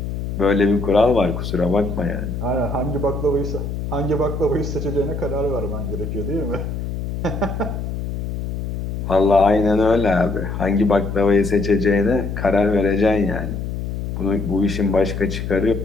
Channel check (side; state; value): left; noise; hum, 4 dB below the sound